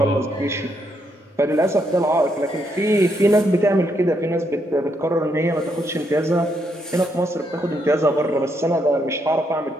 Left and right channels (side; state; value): both; normal; correlation 0.76